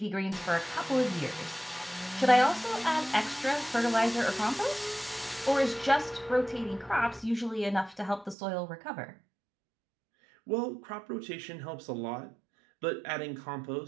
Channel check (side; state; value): left; drops out; at 8.3 s